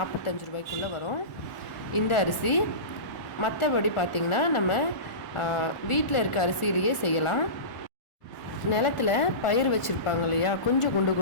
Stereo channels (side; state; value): right; late; 1.4 ms